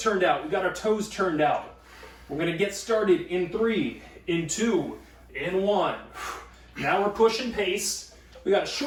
out. We've got our toes turned out. We're gonna get started in 3, in 2, in 1. Now we're pushing pace. We got a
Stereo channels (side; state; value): both; identical; correlation 1.00